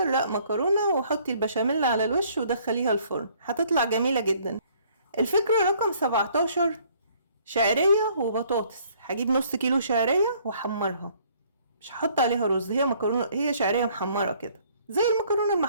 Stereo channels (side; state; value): both; inverted; correlation -0.61